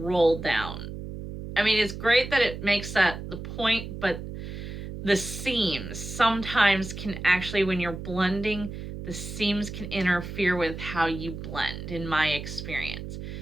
down. I mean, it's great that it makes that the point, but the seams sometimes can actually, when you're blending, the seams can interfere with how you blend, in my experience.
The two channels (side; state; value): right; noise; hum, 9 dB below the sound